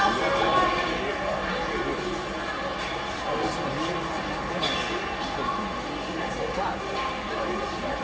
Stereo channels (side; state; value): both; identical; correlation 1.00